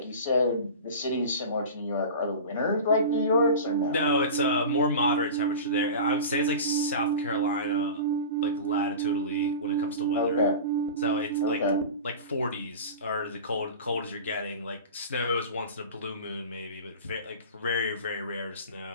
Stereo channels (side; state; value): both; inverted; correlation -0.32